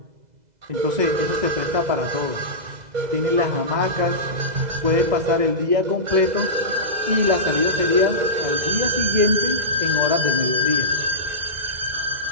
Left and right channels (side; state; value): left; late; 2.0 ms